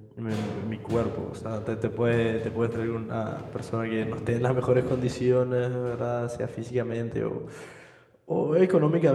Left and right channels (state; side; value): identical; both; correlation 1.00